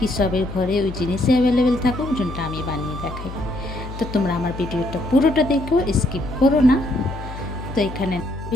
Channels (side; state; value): left; noise; hum, 10 dB below the sound